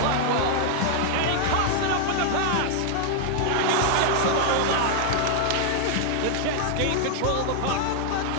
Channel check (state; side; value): different; both; correlation 0.00